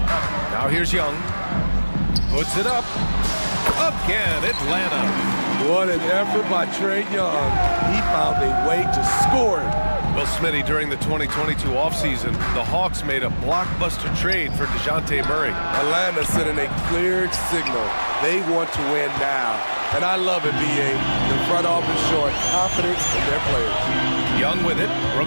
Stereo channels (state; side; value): inverted; both; correlation -1.00